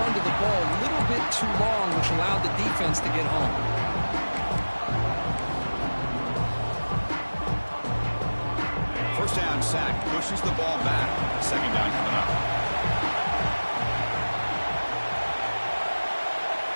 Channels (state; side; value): inverted; both; correlation -1.00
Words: to the ball a little bit too long, which allowed the defense to get home. First down sack, pushes the ball back. Second down coming up.